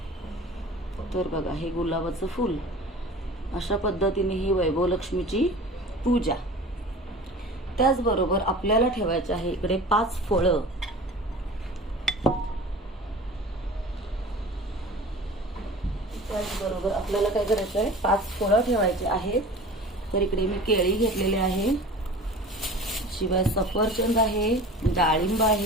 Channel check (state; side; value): normal; both; correlation 0.39